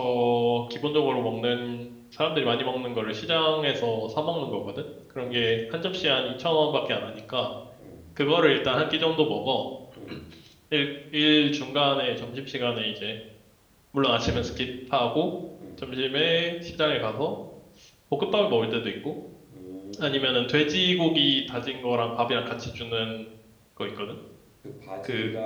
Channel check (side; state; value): both; identical; correlation 1.00